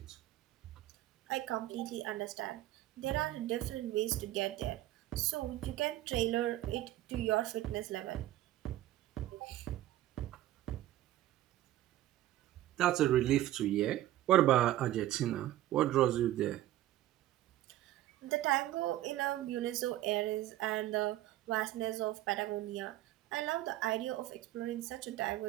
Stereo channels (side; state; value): left; quieter; 14.4 dB